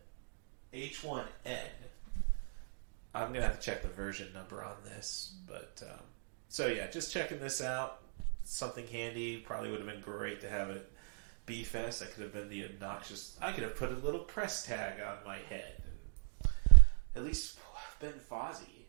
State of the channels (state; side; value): silent; left; digital silence